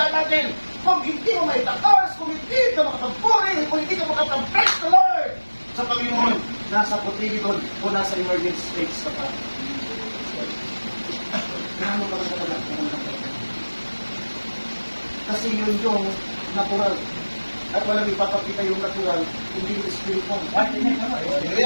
natin, kung hindi mo may takas, kung hindi ka makapagpuri, kung hindi ka makapag-praise the Lord sa Panginoon, nasa Cotyledon o nasa emergency states ka pa. Gaano ka lang talaga? Kasi yun yung natural. At walang ipapakita yung natural, hindi yung spiritual.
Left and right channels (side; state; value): both; inverted; correlation -1.00